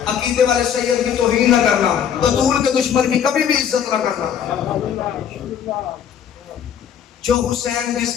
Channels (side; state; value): right; quieter; 8.6 dB